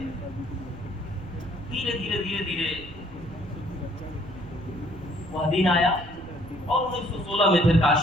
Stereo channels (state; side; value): noise; right; rumble, 17 dB below the sound